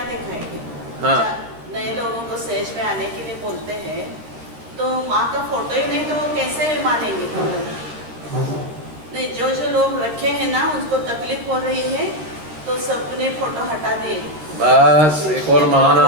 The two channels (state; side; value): late; left; 13 ms